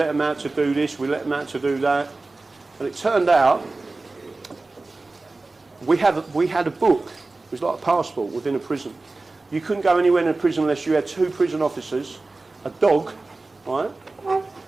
them out to do this, we let them out to do that. And it turned out We had a book. It was like a passport within a prison. You couldn't go anywhere in a prison unless you had 2 prison officers, a dog, right?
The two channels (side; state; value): left; quieter; 3.4 dB